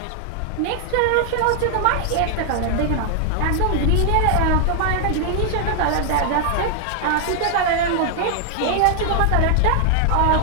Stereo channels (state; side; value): different; both; correlation 0.00